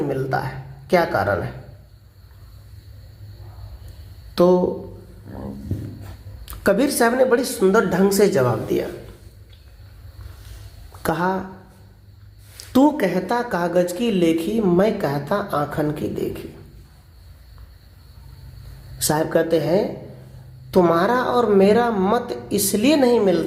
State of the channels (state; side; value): identical; both; correlation 1.00